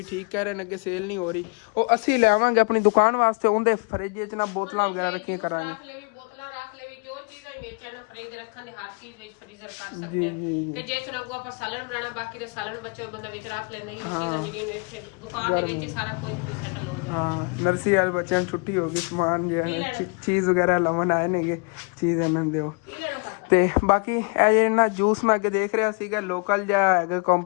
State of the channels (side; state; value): right; quieter; 34.7 dB